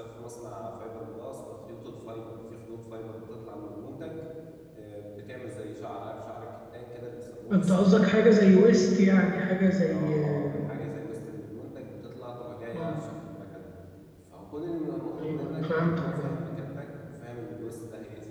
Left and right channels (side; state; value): both; identical; correlation 1.00